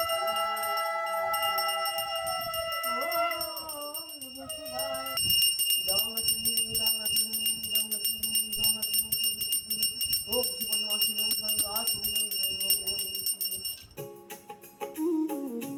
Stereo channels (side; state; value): both; identical; correlation 1.00